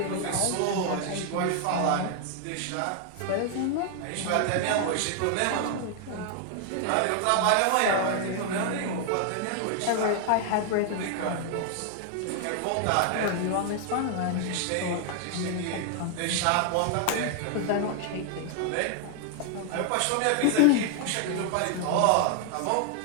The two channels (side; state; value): both; different; correlation 0.00